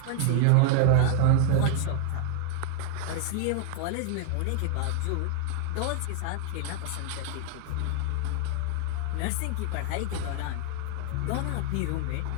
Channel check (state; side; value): different; both; correlation 0.00